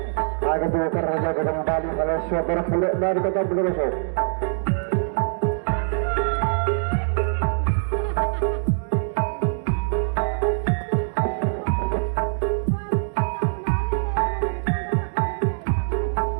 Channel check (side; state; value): left; silent; digital silence